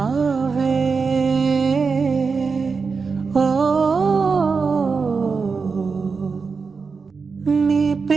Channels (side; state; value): left; quieter; 5.0 dB